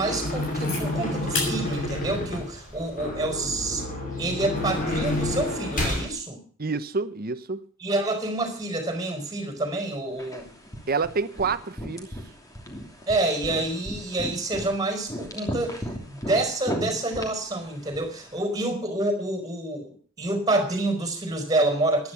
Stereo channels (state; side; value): normal; both; correlation 0.39